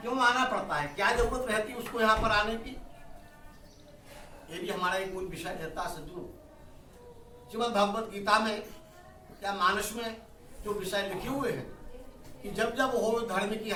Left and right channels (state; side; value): identical; both; correlation 1.00